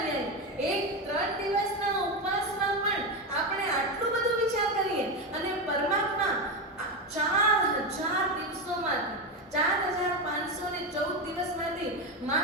એક 3 દિવસના ઉપવાસમાં પણ આપણે આટલું બધું વિચાર કરીએ, અને પરમાત્મા 4000 દિવસોમાંથી 4514 દિવસમાંથી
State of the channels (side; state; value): both; normal; correlation 0.13